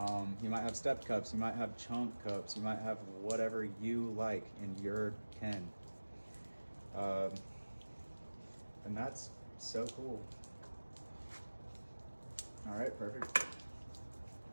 You might have stepped cups. You might have chunk cups. You might have whatever you like in your ken. And that's so cool. All right, perfect.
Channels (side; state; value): both; inverted; correlation -1.00